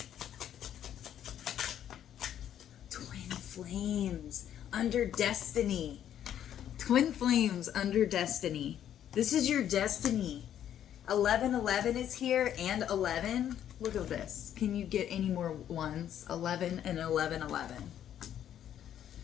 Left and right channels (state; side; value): quieter; right; 10.4 dB